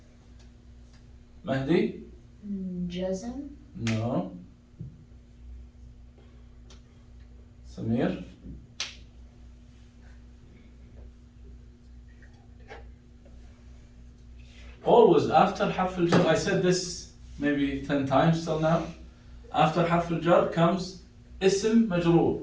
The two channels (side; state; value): both; identical; correlation 1.00